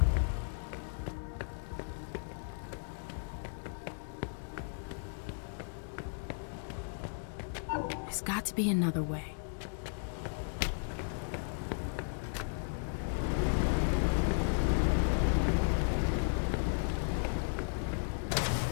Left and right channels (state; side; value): silent; right; digital silence